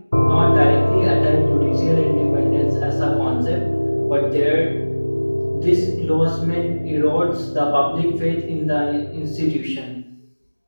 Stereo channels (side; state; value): both; inverted; correlation -1.00